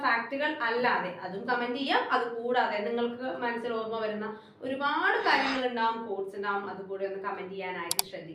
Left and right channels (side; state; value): both; identical; correlation 1.00